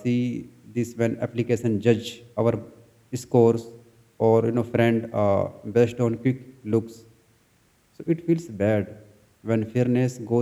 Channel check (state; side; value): identical; both; correlation 1.00